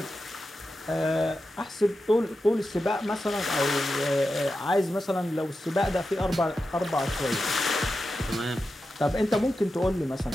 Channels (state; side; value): normal; both; correlation 0.91